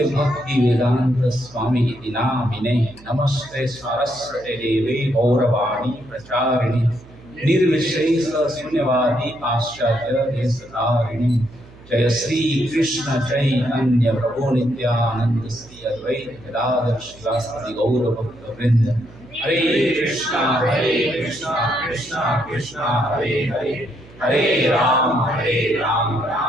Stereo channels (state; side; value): noise; right; hum, 22 dB below the sound